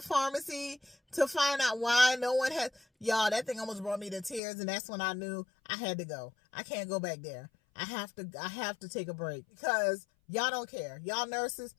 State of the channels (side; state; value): right; drops out; at 4.4 s